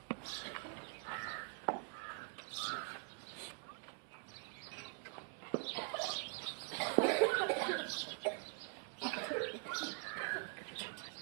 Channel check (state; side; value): quieter; left; 37.7 dB